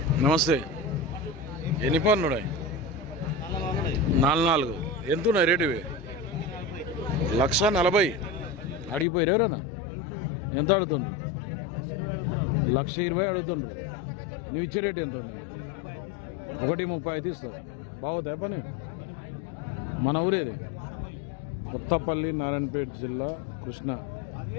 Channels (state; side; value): drops out; right; at 9.1 s